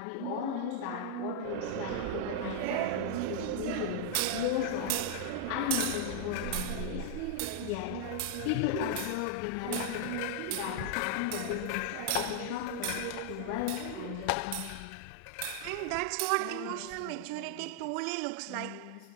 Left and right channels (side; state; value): both; different; correlation 0.00